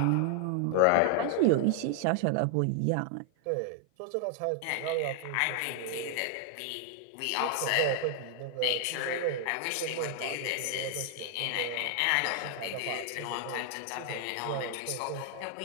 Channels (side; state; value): both; different; correlation 0.00